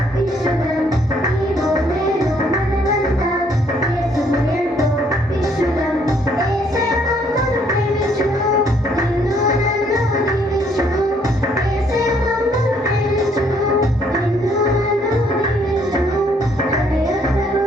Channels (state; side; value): normal; both; correlation 0.66